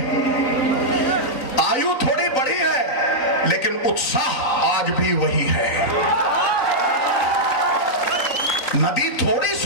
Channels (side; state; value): right; late; 3.9 ms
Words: आयु थोड़ी बढ़ी है, लेकिन उत्साह आज भी वही है। नदी थोड़ी